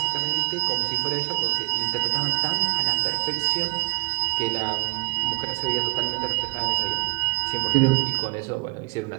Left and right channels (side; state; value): left; quieter; 26.8 dB